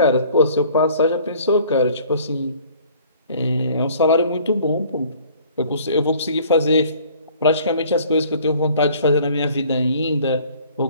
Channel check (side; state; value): both; inverted; correlation -0.54